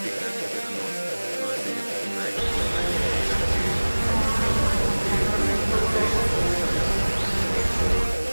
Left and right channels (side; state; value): both; inverted; correlation -1.00